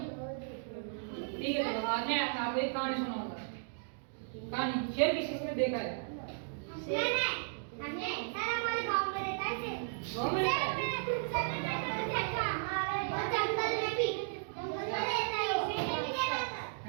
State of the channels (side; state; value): left; silent; digital silence